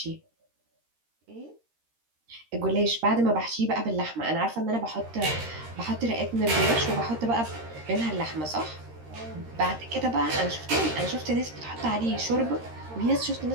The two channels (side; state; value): left; late; 13 ms